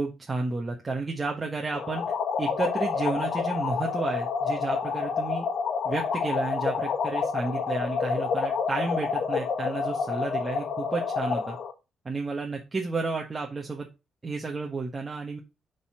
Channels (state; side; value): normal; both; correlation 0.74